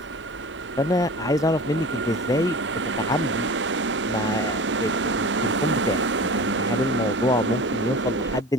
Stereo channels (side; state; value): both; normal; correlation 0.36